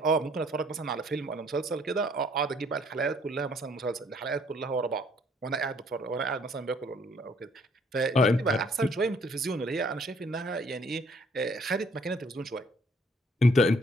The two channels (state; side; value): normal; both; correlation 0.62